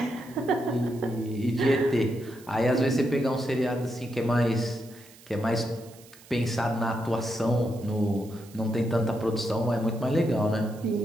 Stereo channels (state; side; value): noise; right; hiss, 23 dB below the sound